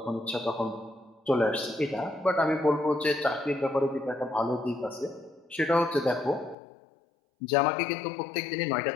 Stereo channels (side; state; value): right; drops out; at 6.6 s